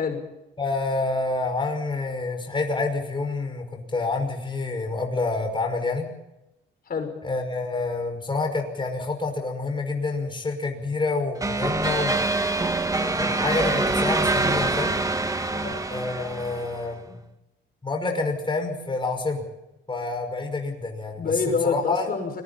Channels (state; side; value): normal; both; correlation 0.46